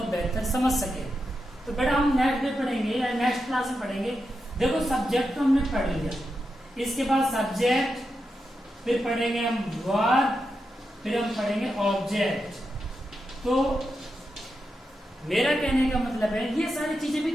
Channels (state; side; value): normal; both; correlation 0.87